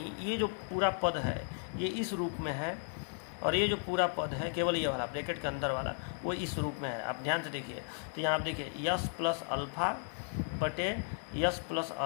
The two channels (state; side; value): silent; right; 54 dB below the other